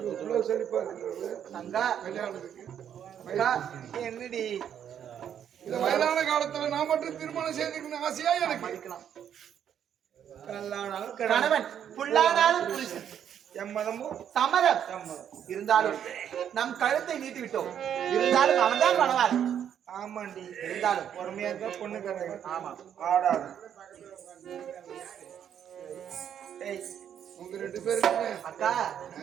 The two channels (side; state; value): left; quieter; 9.2 dB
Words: செழிப்பா இருக்கிறது அக்கா கல்யாணத்துக்கு. அக்கா என்னடி இந்த வயதான காலத்துல நான் மட்டும் திருமணம் செய்துக்கணும் ஆசையா எனக்கு. மதிக்கலாம். கணவன் புல்லானாலும் புருஷன் எம்மதமும் சம்மதம். இருந்தாலும் நம் கழுத்தை நீட்டி விட்டோம். இருந்தாலும் அவன் தான் பண்ணுவார். ஆமாண்டி இருந்தாலும் பொறுமையா இருந்தா பொண்ணு கரை. ஆமா ஆடாது. ஏய் உங்க 2 பேருக்குமே அக்கா